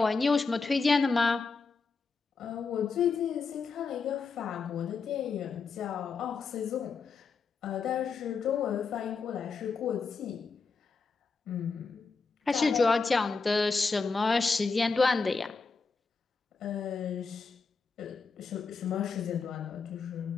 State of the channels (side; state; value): right; quieter; 4.7 dB